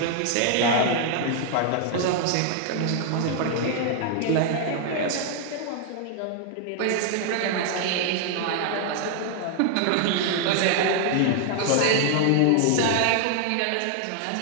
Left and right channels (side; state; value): both; different; correlation 0.00